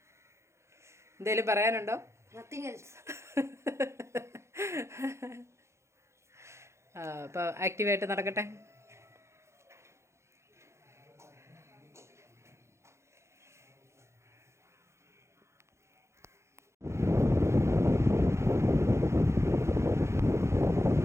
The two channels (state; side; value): late; left; 0.13 ms